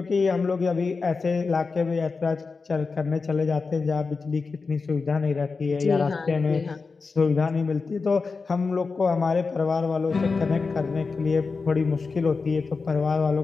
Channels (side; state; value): right; quieter; 4.5 dB